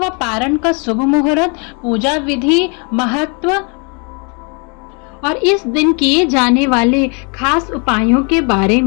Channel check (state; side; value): quieter; right; 34.5 dB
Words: पारण का शुभ मुहूर्त, पूजा विधि, महत्व और इस दिन किए जाने वाले खास उपायों के बारे